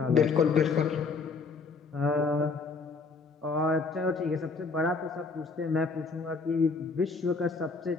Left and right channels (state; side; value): quieter; right; 4.4 dB